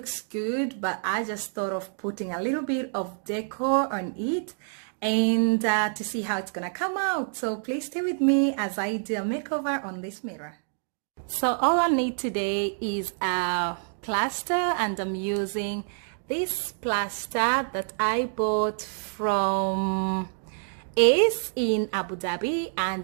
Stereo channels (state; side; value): silent; left; 60 dB below the other